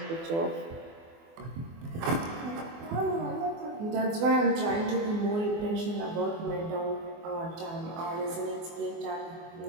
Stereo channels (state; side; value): late; left; 24 ms